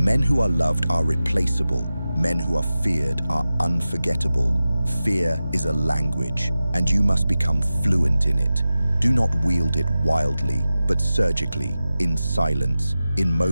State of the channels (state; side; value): inverted; both; correlation -0.94